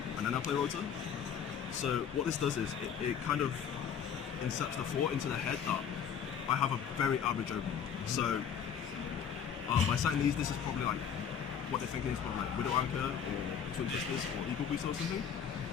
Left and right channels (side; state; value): right; quieter; 7.8 dB